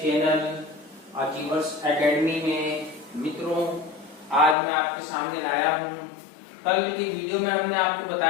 चैनल अचीवर्स एकेडमी में। मित्रों, आज मैं आपके सामने लाया हूं। कल की वीडियो में हमने आपको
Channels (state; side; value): drops out; right; at 4.5 s